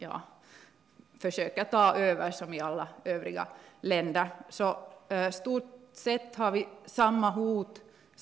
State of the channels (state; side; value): quieter; left; 7.3 dB